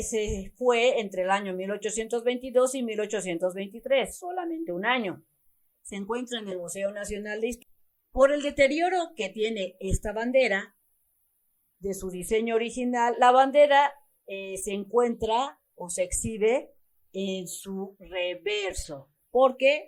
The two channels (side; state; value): both; identical; correlation 1.00